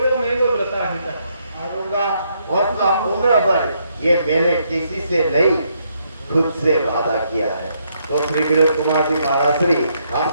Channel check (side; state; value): both; inverted; correlation -0.75